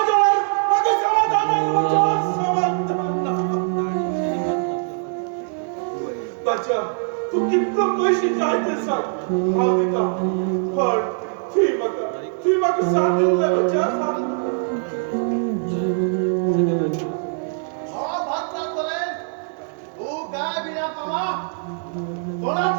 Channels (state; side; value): silent; left; digital silence